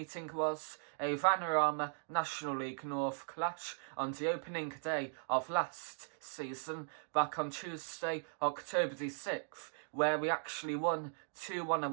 was a Vanarama National League North clash on the opening day of last season, back on Tuesday, October the 6th, where we actually won 2-1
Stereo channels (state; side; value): silent; left; digital silence